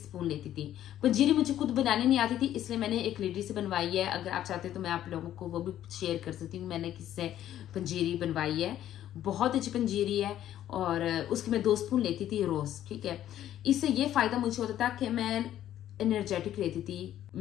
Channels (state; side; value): quieter; right; 11.9 dB